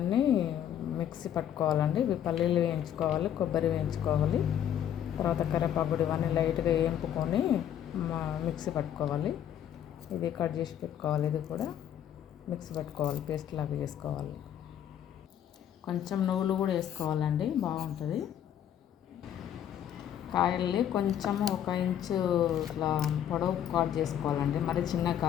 మిక్సీ పట్టుకోవాలండి. ఇవి పల్లీలు వేయించుకోవాలి, కొబ్బరి వేయించుకోవాలి, తర్వాత కరివేపాకు ఇవన్నీ లైట్గా వేయింపుకొని మిక్సీ పట్టుకోవాలి. ఇది కట్ చేసి పెట్టుకోవాలి. ఇది కూడా మిక్సీ పట్టుకోవాలి, పేస్ట్ లాగా చేసుకోవాలి. కొంచెం నువ్వులు కూడా వేసుకోవాలండి, బాగుంటుంది. కాయల్ని కొంచెం 1 ఇంచు ఇట్లా పొడవు కట్ చేసుకోవాలండి. మరి చిన్నగా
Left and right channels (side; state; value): right; quieter; 10.1 dB